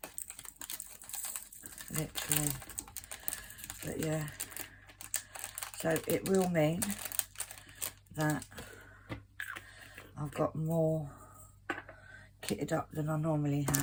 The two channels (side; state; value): both; identical; correlation 1.00